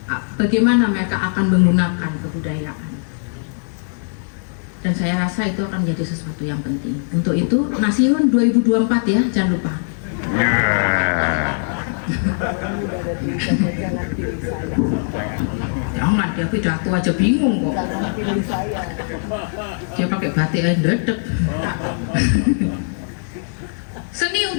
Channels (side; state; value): right; silent; digital silence